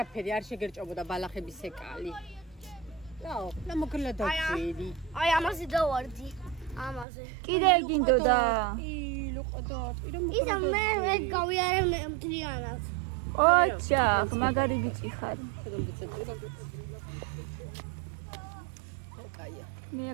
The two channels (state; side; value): drops out; left; at 7.1 s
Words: არ შეგერჭობოდა ბალახების ეკალი. რაო, მოკლა დავწიდი. აი ამაზე დავარდი. ამაზე. კიდე გინდოდა ისა მე გავიარე მთლიანად. ოჩახ მაგარი ბიჭი ხარ კაია. მე